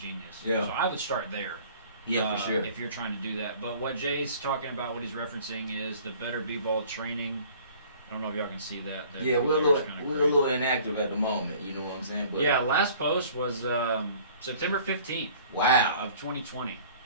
Yeah. So I would start there. Yeah, for sure. If you're trying to do that. But what Jay's talking about, what he's referencing is the Better B-Ball training. I don't know if y'all can see that. Yeah, we're a little inactive at the moment. You know what I'm saying? But yeah, last post was September 15th. Wow. Of 2020.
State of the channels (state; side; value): inverted; both; correlation -0.51